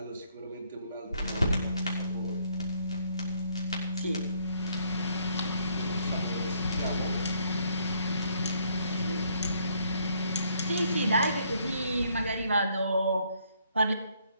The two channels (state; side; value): inverted; both; correlation -0.69